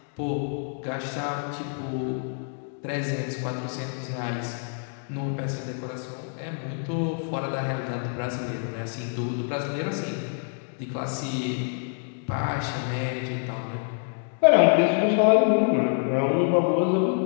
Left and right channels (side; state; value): right; silent; 58 dB below the other